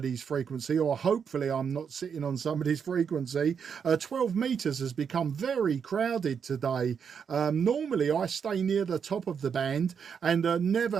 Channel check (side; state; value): left; quieter; 6.9 dB